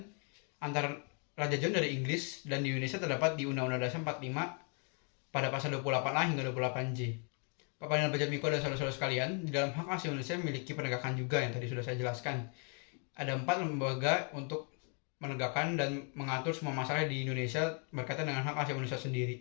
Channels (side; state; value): right; quieter; 39.9 dB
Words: antara Raja John dari Inggris dan di Indonesia terdapat di Undang-Undang Dasar 45 pada pasal 28A hingga 28J. Bapak dan Bapak Miko dan saudara-saudara sekalian, di dalam hak asasi manusia memiliki penegakan juga yang tadi sudah saya jelaskan. Ada 4 lembaga untuk menegakkan dan mengatur semua masalah di Indonesia berkaitan dengan hak asasi manusia